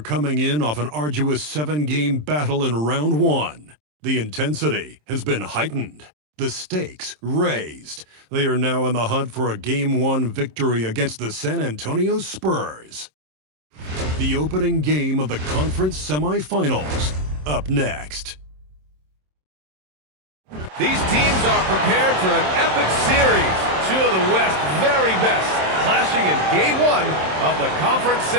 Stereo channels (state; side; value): late; left; 27 ms